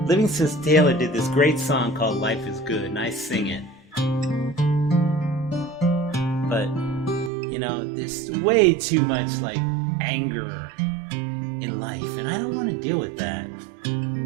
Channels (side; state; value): left; drops out; at 7.3 s